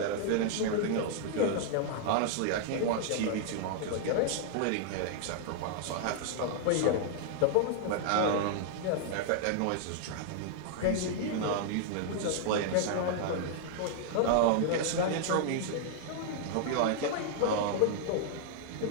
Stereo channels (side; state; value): both; different; correlation -0.01